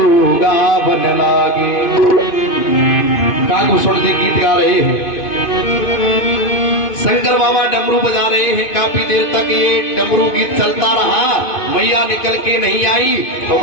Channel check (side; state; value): right; late; 2.5 ms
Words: बन लागे। कागभूषण जी गीत गा रहे हैं, शंकर बाबा डमरू बजा रहे हैं। काफी देर तक ये डमरू गीत चलता रहा, मैया निकल के नहीं आई। तो